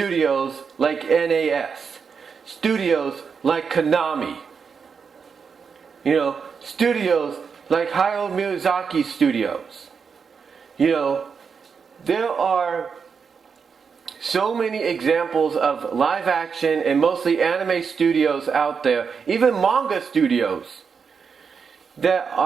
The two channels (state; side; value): quieter; left; 6.0 dB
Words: like NAS, studios like Konami, studios like Hayao Miyazaki studios. There are so many examples of live action and mostly anime studios out there, even manga studios, that